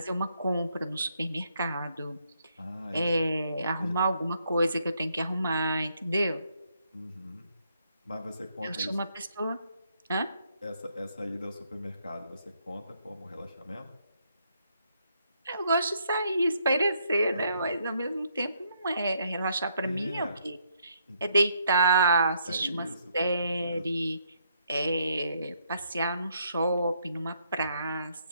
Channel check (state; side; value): inverted; both; correlation -0.73